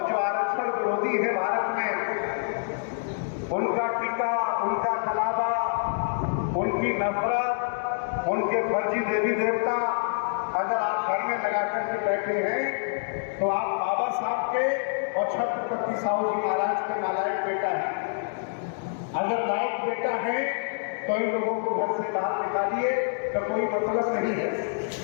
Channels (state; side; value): silent; right; digital silence